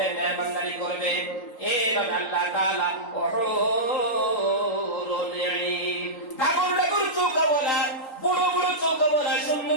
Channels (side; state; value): right; late; 3.8 ms